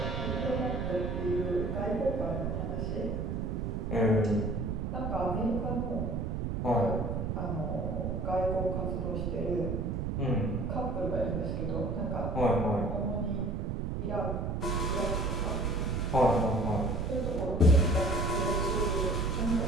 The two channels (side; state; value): right; noise; rumble, 1 dB below the sound